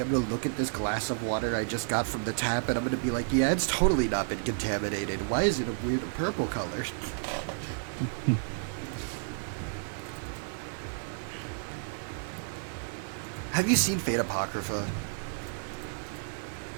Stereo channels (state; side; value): silent; left; 57 dB below the other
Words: gonna look at this glass of water I just got from the tap, and I'm gonna be like, yeah, it's totally not been contaminated. Why is it a weird purple color? Have you seen Fate Apocrypha?